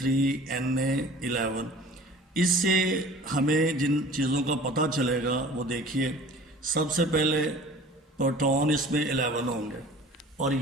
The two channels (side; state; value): both; normal; correlation 0.44